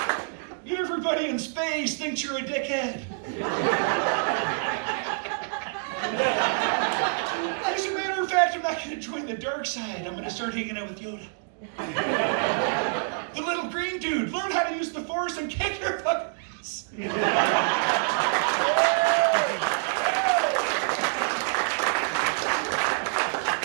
Everybody in space thinks you're a dickhead. As a matter of fact, I'm not going to join the dark side. I'm going to start hanging out with Yoda. The little green dude, learn how to use the Force and kick your fucking ass.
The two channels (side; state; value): left; silent; digital silence